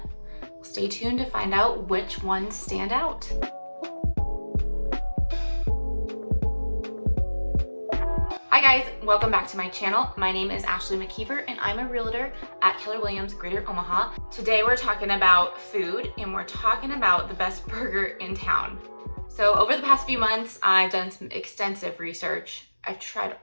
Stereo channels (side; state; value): both; inverted; correlation -1.00